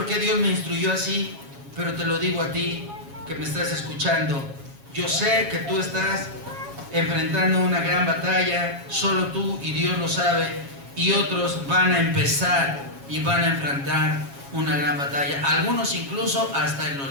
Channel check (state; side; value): late; left; 7.3 ms